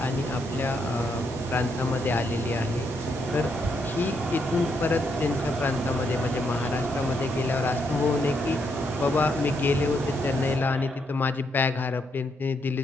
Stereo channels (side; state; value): both; normal; correlation 0.77